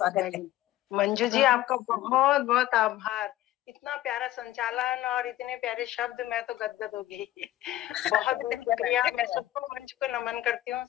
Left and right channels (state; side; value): quieter; right; 14.7 dB